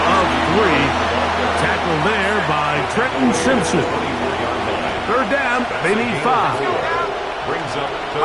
of 3. Tackle there by Trenton Simpson. 3rd down, they need 5. Brings up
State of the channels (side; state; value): both; identical; correlation 1.00